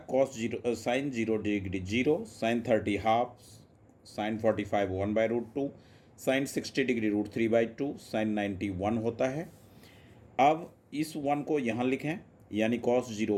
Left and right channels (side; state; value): both; identical; correlation 1.00